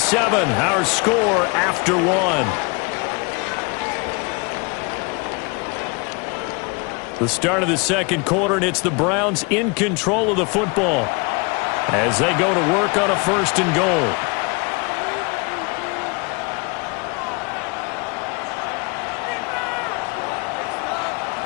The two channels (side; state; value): right; quieter; 30.2 dB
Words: our score after 1. The start of the second quarter, and it's the Browns in control of the football as they go to work on a 1st and goal.